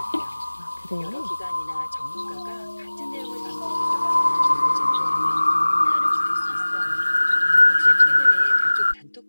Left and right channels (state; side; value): inverted; both; correlation -1.00